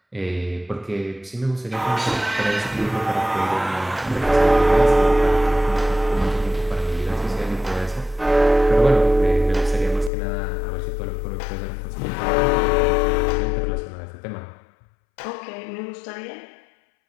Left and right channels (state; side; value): drops out; right; at 10.1 s